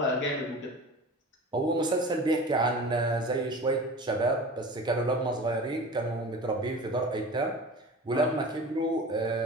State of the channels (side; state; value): both; normal; correlation 0.36